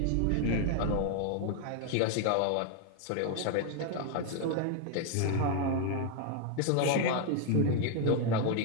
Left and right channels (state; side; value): different; both; correlation 0.01